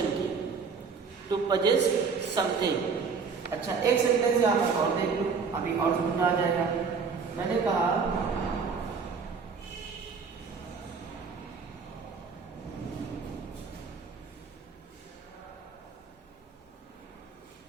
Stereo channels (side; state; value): left; quieter; 5.4 dB